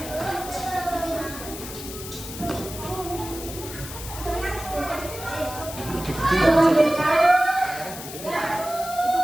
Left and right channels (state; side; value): noise; left; hiss, 11 dB below the sound